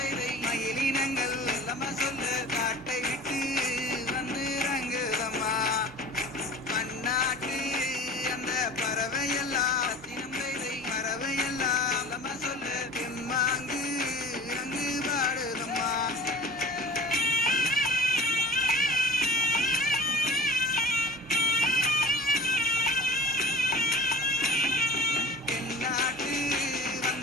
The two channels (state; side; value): normal; both; correlation 0.40